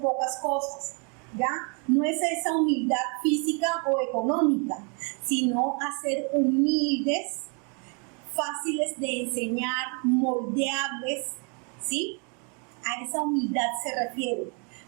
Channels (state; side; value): quieter; left; 36.4 dB